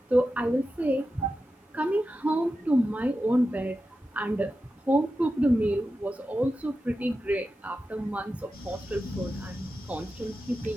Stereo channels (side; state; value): both; normal; correlation 0.91